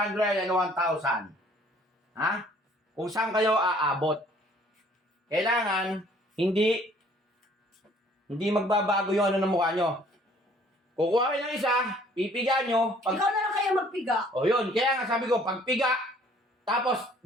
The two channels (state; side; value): normal; both; correlation 0.58